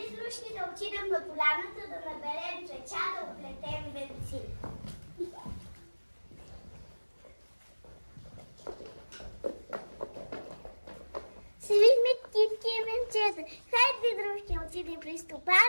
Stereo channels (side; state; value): both; inverted; correlation -1.00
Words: дошли да отидем на поляната да наберем цвеча, да оплетем венци. Свихме китки и венчета. Хайде, дружки, отидем при